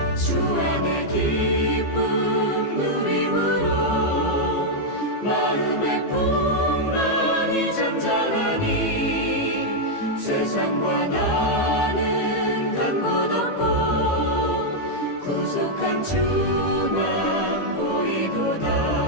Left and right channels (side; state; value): right; late; 15 ms